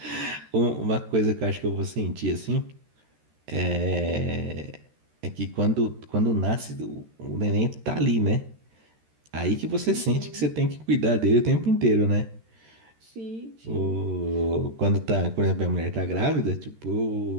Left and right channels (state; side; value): late; left; 13 ms